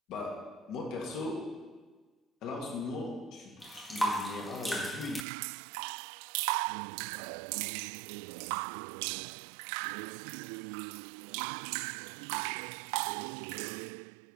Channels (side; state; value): left; drops out; at 5.2 s